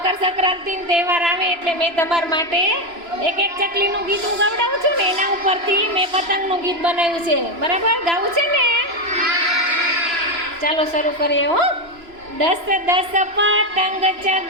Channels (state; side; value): late; left; 3.0 ms